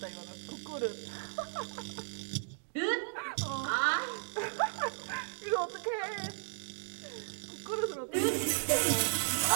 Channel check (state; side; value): silent; left; digital silence